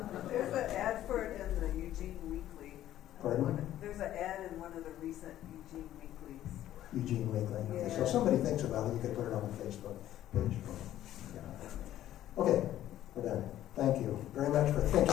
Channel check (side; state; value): right; quieter; 12.8 dB